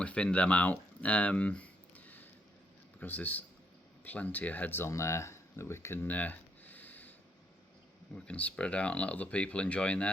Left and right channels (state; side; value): normal; both; correlation 0.72